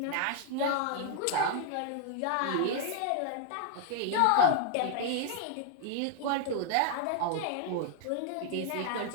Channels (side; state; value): both; different; correlation 0.00